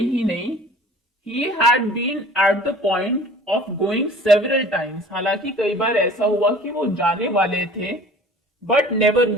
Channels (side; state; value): both; normal; correlation 0.46